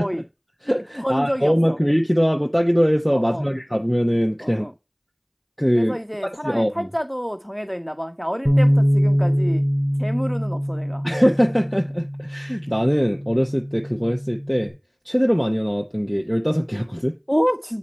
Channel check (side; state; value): both; identical; correlation 1.00